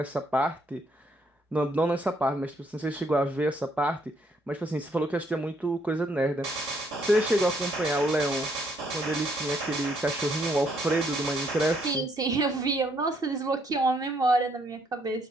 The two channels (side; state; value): both; normal; correlation 0.70